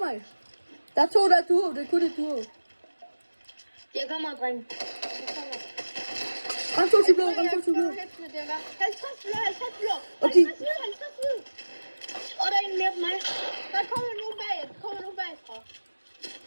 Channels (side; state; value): both; inverted; correlation -1.00